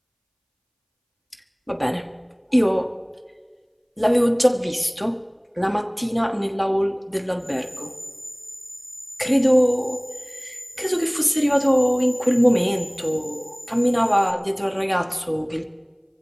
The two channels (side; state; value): both; identical; correlation 1.00